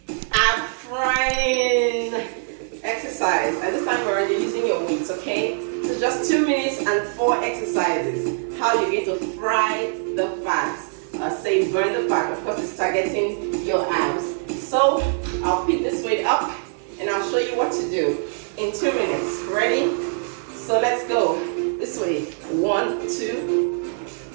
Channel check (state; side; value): silent; left; digital silence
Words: ab frying exercise. At this time, we're already using your weights, okay? So just 2 minutes and 4 exercises. How you're going to fry the fats. Say burn the fat. Of course, it's targeting your abs. So I'll pick this weight up and I'll show you what to do in 2 minutes. Ready? So let's go. This way. 1, 2.